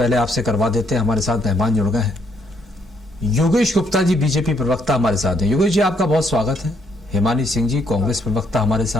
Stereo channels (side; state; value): both; normal; correlation 0.71